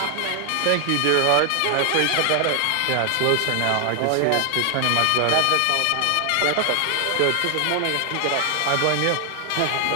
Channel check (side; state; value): both; different; correlation 0.00